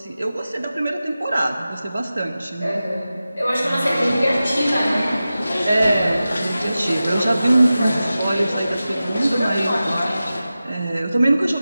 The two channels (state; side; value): inverted; both; correlation -0.94